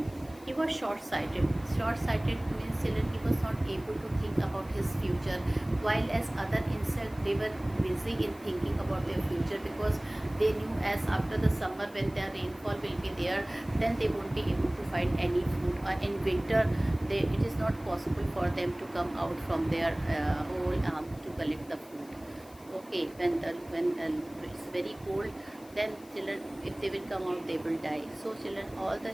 He was short-sighted. Short-sighted means children, he was not able to think about his future, while as other insects they were busy in thinking about their future because they knew as after the summer when the rainfall will be there, then they won't be able to find any food. Or in winter, it is not possible for them to come out from their hole to collect the food. Okay, when it's very cold, then children, if they will come out, they will die. So children, all the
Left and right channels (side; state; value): left; noise; hiss, 24 dB below the sound